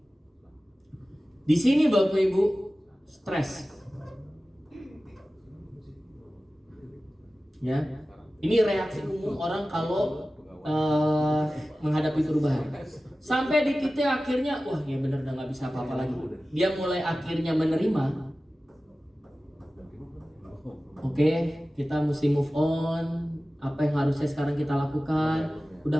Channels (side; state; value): both; normal; correlation 0.96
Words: Di sini Bapak Ibu stres. Ya, ini reaksi umum orang kalau menghadapi perubahan. Sampai di titik akhirnya, wah ya bener udah nggak bisa apa-apa lagi. Dia mulai akhirnya menerima. Oke, kita mesti move on. Apa yang harusnya sekarang kita lakukan,